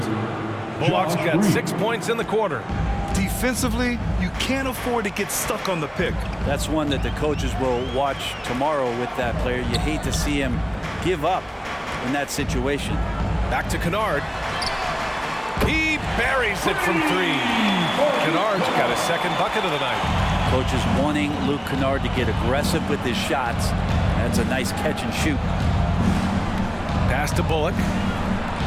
Bullock's got 6 points in the quarter. Defensively, you can't afford to get stuck on the pick. That's one that the coaches will watch tomorrow with that player. You hate to see him give up in that situation. Back to Kennard. He buries it from 3. Kennard's got his second bucket of the night. Coaches wanting Luke Kennard to get aggressive with his shots. That's a nice catch and shoot. Pass to Bullock.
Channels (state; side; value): identical; both; correlation 1.00